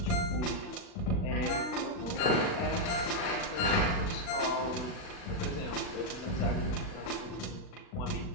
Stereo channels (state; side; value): late; right; 39 ms